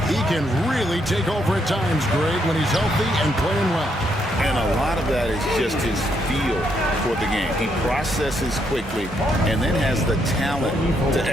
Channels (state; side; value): normal; both; correlation 0.75